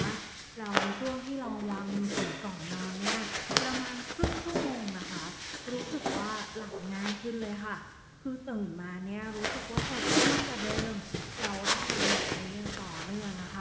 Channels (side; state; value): both; identical; correlation 1.00